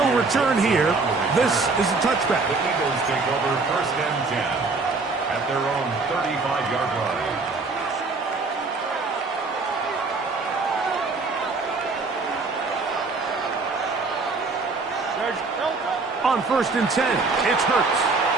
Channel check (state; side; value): quieter; left; 4.0 dB